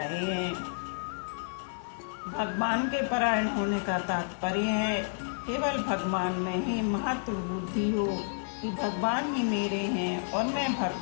हैं। भगवान के परायण होने का तात्पर्य है केवल भगवान में ही महत्व बुद्धि हो कि भगवान ही मेरे हैं और मैं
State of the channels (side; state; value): right; silent; digital silence